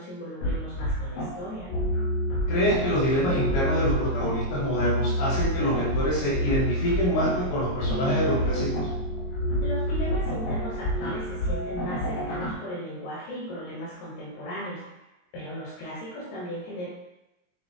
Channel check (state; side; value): late; right; 22 ms